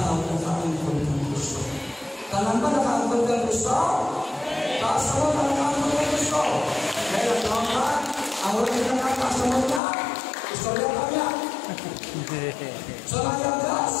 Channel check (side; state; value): right; drops out; at 9.8 s